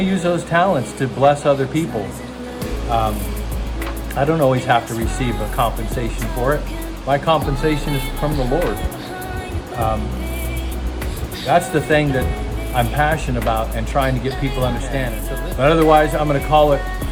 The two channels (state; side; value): identical; both; correlation 1.00